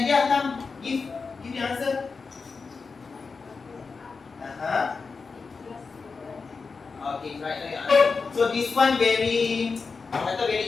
come give the answer. Okay, right now your answer. So this one very, kata very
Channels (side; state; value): right; quieter; 4.7 dB